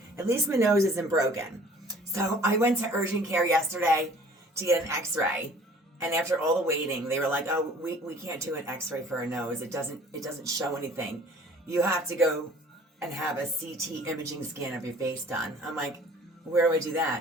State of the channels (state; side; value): normal; both; correlation 0.51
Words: broken. So I went to urgent care yesterday to get an x-ray, and after all the waiting, they were like, oh, we can't do an x-ray for a nose. It doesn't show anything. You have to go and have a CT imaging scan of your face done. I'm like, where do I do